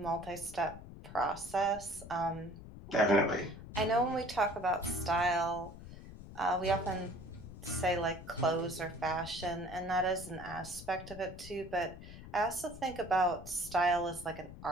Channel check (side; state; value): left; noise; rumble, 14 dB below the sound